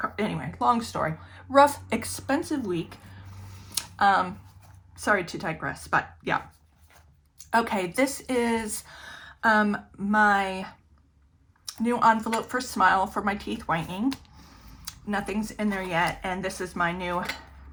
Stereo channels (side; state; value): both; identical; correlation 1.00